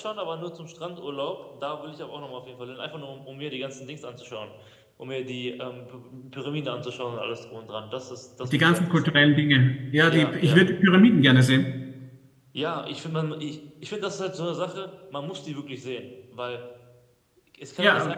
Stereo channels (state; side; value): identical; both; correlation 1.00